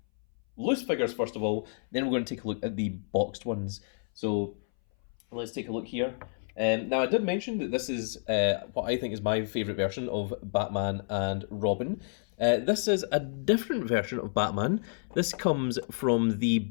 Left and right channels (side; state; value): right; silent; 58 dB below the other